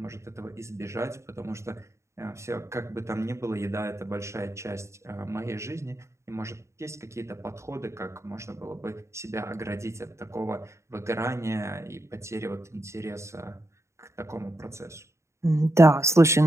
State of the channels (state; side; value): late; left; 0.14 ms